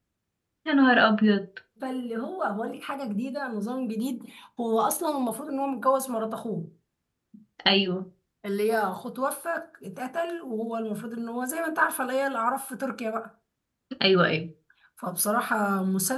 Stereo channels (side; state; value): both; identical; correlation 1.00